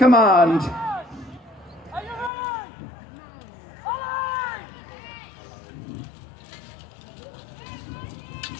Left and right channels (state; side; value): drops out; right; at 2.3 s